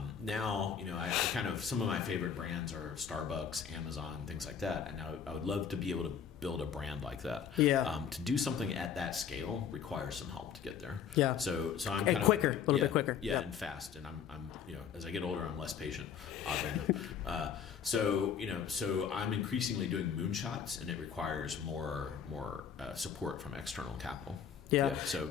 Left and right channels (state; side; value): quieter; right; 7.7 dB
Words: Now, I some of my favorite brands are Starbucks, Amazon, things like that. And now I would love to be able to build a brand like that. Yeah. To do something at that scale requires some help to get there. Yeah. So I'm kind of quicker, a little bit quicker. Yeah, and fast. And I'm as I get older, I'm less patient, oddly enough. So I'm increasingly doing moonshots, and it requires more support from external capital. Yeah. So